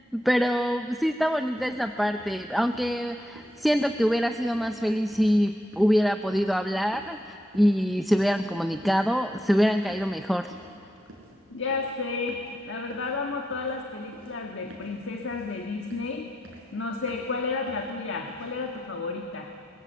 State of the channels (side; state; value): both; normal; correlation 0.83